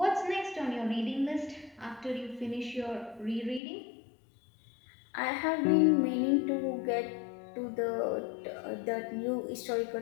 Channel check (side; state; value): right; drops out; at 3.6 s